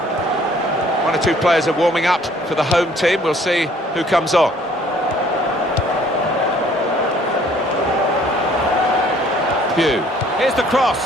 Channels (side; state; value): both; normal; correlation 0.58